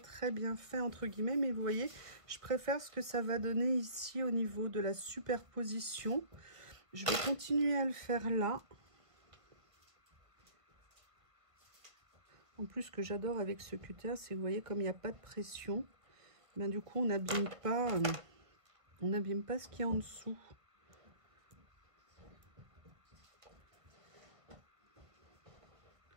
bien fait entre guillemets, mais vous voyez, je préfère ce que ça va donner ici au niveau de la superposition. Je vais continuer à le faire là. En plus, ce que j'adore avec ce cutter, c'est que vous voyez, comme il n'y a pas de pression, ben, du coup on n'abîme pas ce qu'il y a en dessous.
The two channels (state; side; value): late; left; 1.3 ms